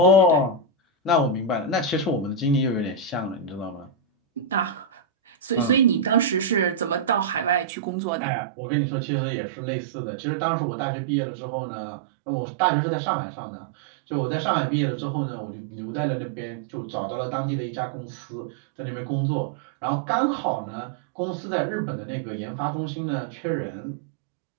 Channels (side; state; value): left; drops out; at 7.7 s